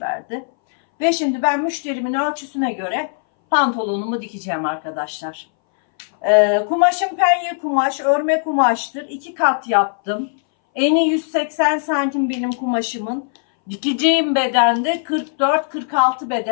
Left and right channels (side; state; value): right; silent; 61 dB below the other